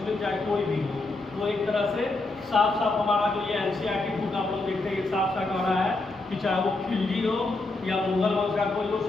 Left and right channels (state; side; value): quieter; right; 3.2 dB